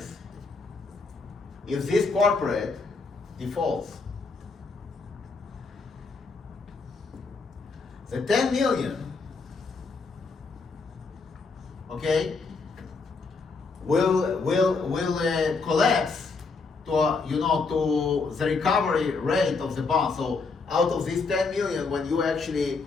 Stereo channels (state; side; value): quieter; right; 4.3 dB